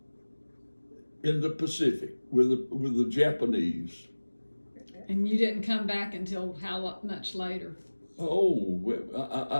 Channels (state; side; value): inverted; both; correlation -1.00